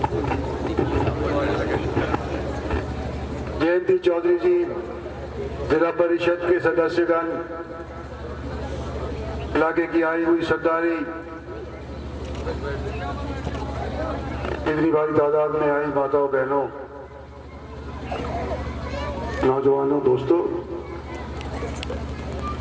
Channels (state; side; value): identical; both; correlation 1.00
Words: जयंती चौधरी जी, जिला परिषद के सदस्यगण, इलाके की आई हुई सरदारी, इतनी भारी तादाद में आई माताओं बहनों, नौजवानों, दोस्तों,